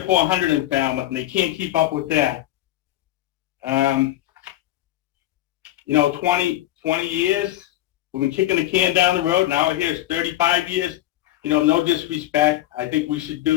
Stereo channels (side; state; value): right; quieter; 14.7 dB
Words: or 400 in Falmouth, and they can't keep up with that. 20 years, we've been kicking the can down the road. Now here it's 35 years. No disrespect. I think we should